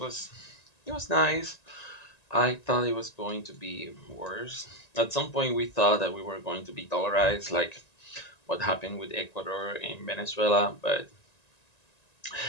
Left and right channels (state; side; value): late; right; 1.9 ms